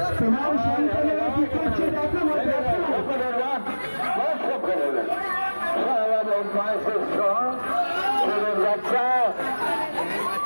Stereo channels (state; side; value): inverted; both; correlation -1.00